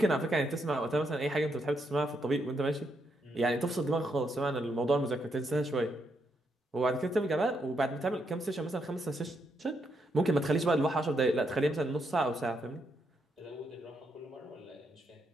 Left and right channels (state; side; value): normal; both; correlation 0.79